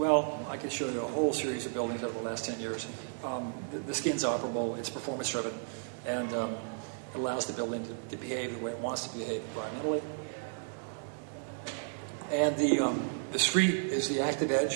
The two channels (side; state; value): left; silent; 56 dB below the other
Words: I could show you a whole series of buildings over the last 10 years. The skin's operable, it's performance-driven, and it allows the building to behave the way it wants to behave environmentally. And the street is the active